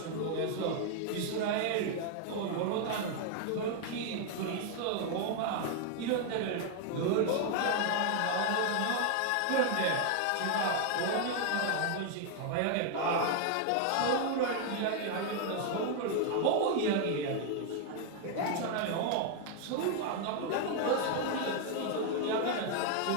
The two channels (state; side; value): different; both; correlation 0.00